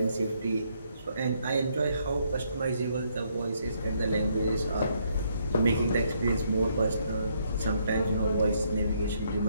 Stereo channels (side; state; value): both; inverted; correlation -0.72